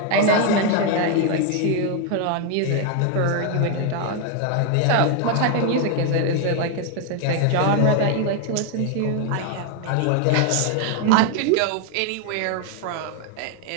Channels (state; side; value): different; both; correlation 0.01